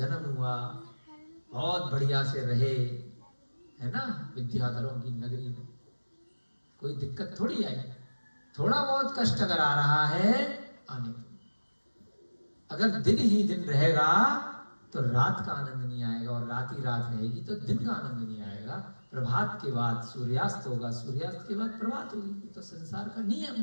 हुआ, बहुत बढ़िया से रहे, है ना, विद्याधरों की नगरी में। कोई दिक्कत थोड़ी आई। थोड़ा बहुत कष्ट अगर आ रहा है आने दो। अगर दिन ही दिन रहेगा तो रात का आनंद नहीं आएगा, और रात ही रात रहेगी तो दिन का आनंद नहीं आएगा। प्रभात के बाद सूर्यास्त होगा, सूर्यास्त के बाद प्रभात होगी। तो संसार का नियम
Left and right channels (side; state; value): both; inverted; correlation -1.00